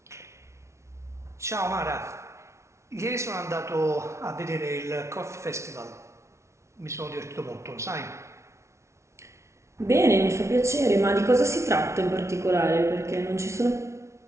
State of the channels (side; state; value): left; late; 0.13 ms